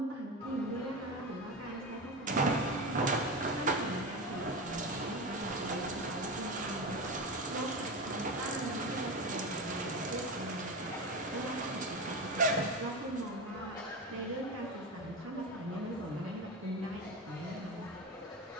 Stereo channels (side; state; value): both; normal; correlation 0.21